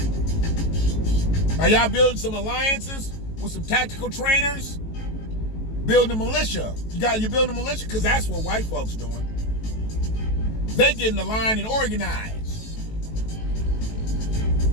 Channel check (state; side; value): late; right; 18 ms